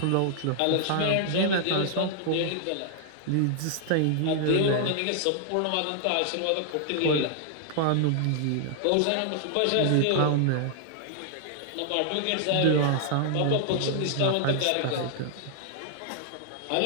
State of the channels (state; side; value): different; both; correlation -0.01